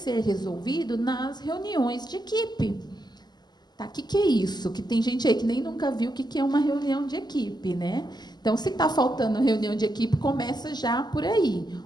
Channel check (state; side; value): late; right; 0.21 ms